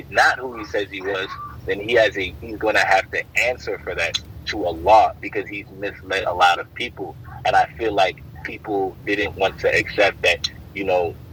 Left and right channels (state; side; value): identical; both; correlation 1.00